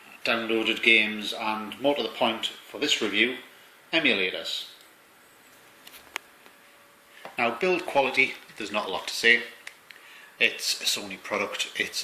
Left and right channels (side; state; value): both; identical; correlation 1.00